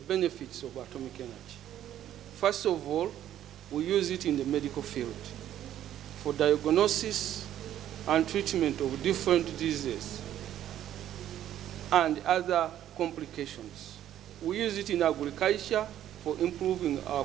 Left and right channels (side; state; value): left; quieter; 11.5 dB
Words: benefits of atomic energy. First of all, we use it in the medical field for diagnosis and treatment of different diseases and other complications. We use it in agriculture for improving our